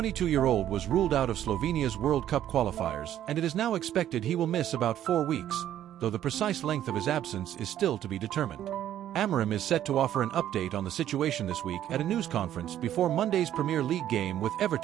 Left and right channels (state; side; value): quieter; left; 11.5 dB